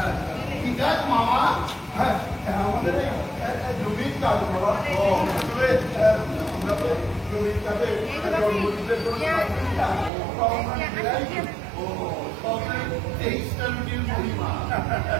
ঠিক আছে মামা। হ্যাঁ, আমাদের জমির কাজ বাবা। আসলে আমরা তো জমির কাজে জন্মদিনের জন্য ও তবে 23টা রুটির মহিমা।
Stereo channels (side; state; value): left; drops out; at 10.1 s